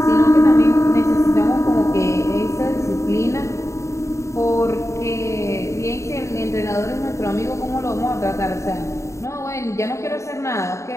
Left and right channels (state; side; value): late; right; 0.14 ms